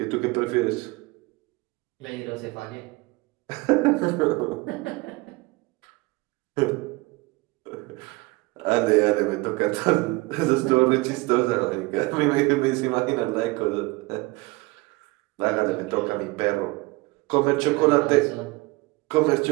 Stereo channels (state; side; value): quieter; left; 23.5 dB